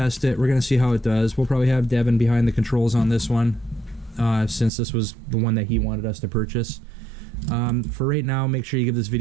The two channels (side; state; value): left; drops out; at 4.7 s